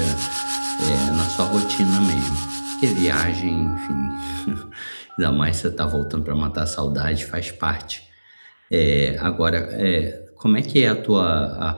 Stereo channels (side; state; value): both; inverted; correlation -1.00